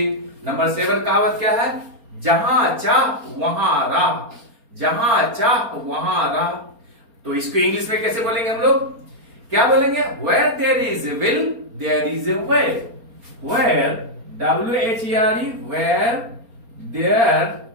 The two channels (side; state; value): left; late; 4.3 ms